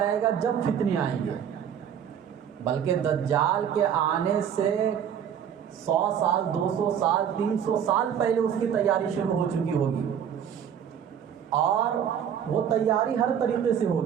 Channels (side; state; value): left; quieter; 8.7 dB